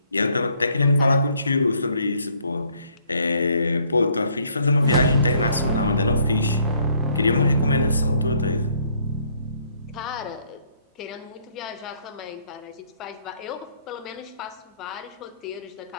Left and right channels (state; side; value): inverted; both; correlation -0.66